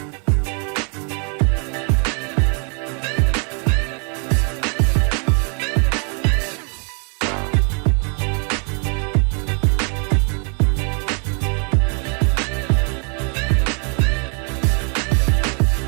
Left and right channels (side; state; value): left; quieter; 39.5 dB